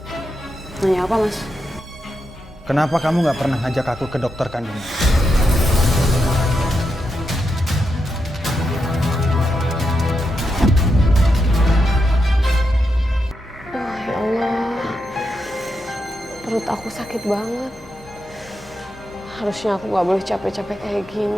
Nanya apa mas? Kenapa kamu nggak pernah ngajak aku ke dokter kandungan? Ya Allah, perut aku sakit banget. Harusnya aku gak boleh capek-capek kayak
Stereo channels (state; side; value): normal; both; correlation 0.85